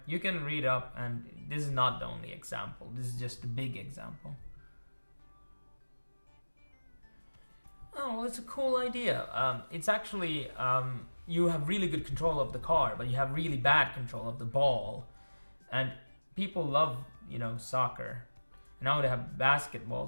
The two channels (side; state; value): both; inverted; correlation -1.00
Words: you can read up, and this is not the only example. This is just a big example. Oh, well, it's a cool idea. It's actually, you have really good control of the car, but you have really bad control of the ball. And people love, soccer. Now they have